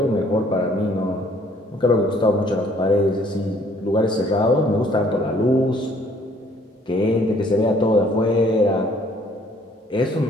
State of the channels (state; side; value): normal; both; correlation 0.61